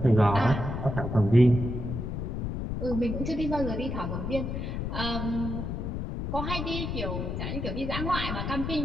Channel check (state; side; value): noise; left; rumble, 3 dB below the sound